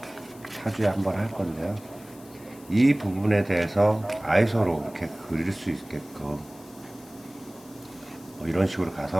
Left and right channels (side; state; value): left; noise; hiss, 23 dB below the sound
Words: 사주에 한 번 할 건데요. 이 부분에 대해서 아이소로 이렇게 그릴 수 있게끔 이런 식으로